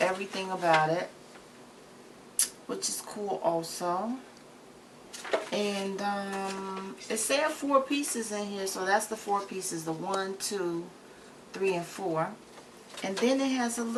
about it, which is cool also. And it said 4 pieces in here, so that's the 4 pieces, the 1, 2, 3, and 4. And then it has a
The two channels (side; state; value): both; identical; correlation 1.00